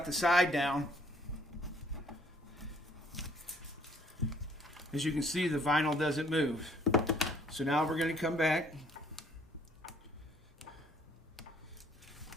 the side down, as you can see, the vinyl doesn't move. So now we're going to come back.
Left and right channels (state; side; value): normal; both; correlation 0.62